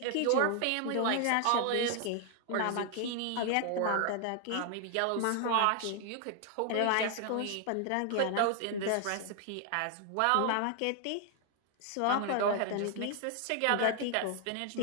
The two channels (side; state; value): both; different; correlation 0.00